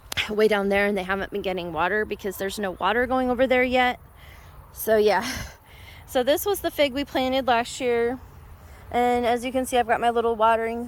way down there and they haven't been getting water because there's no water going over there yet. So yeah, so this was the fig we planted last year, and as you can see, I've got my little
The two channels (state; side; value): identical; both; correlation 1.00